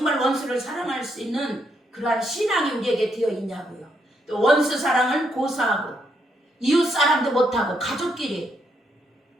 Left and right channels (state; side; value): normal; both; correlation 0.77